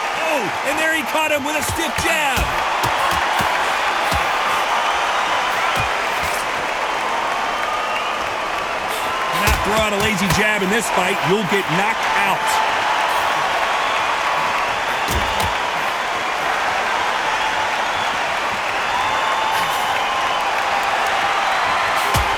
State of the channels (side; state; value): both; identical; correlation 1.00